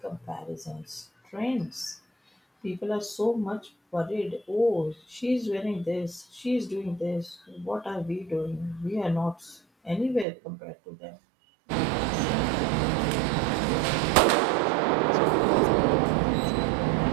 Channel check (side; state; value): left; drops out; at 10.2 s